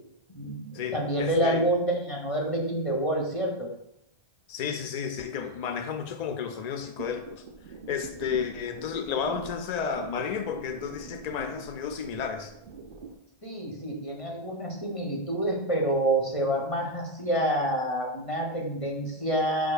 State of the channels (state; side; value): late; right; 1.9 ms